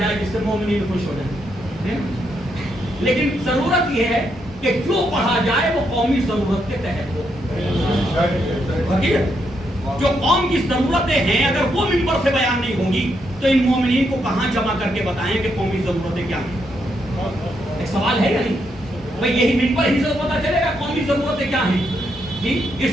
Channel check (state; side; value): normal; both; correlation 0.79